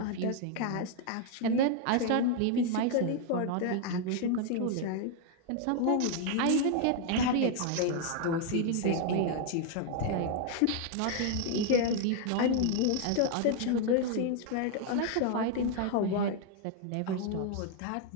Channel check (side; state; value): both; different; correlation 0.00